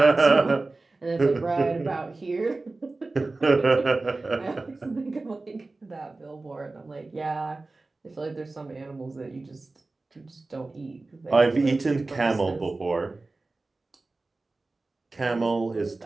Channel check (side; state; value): left; quieter; 3.4 dB